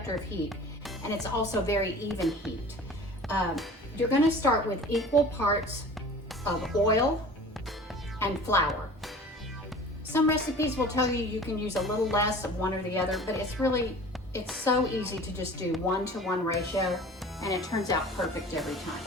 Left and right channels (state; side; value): normal; both; correlation 0.42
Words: of heat, and it's also very even heat. You're gonna start with equal parts of oil and flour. Some recipes will tell you can use a little less of one or the other, but it's so easy to just do 1-to-1 ratio, and it turns out perfect every time.